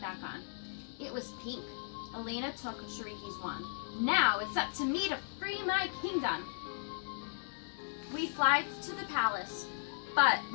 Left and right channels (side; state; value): right; silent; digital silence